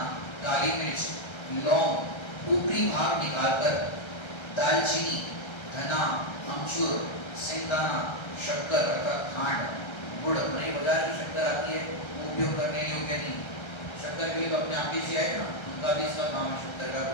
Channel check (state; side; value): late; right; 1.3 ms